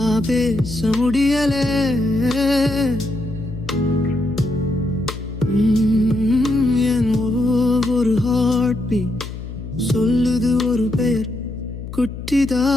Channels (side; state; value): left; noise; hum, 10 dB below the sound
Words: பேச முடியலே. என் ஒவ்வொரு ஹார்ட் பீட் சொல்லுது ஒரு பெயர் குட்டிதா.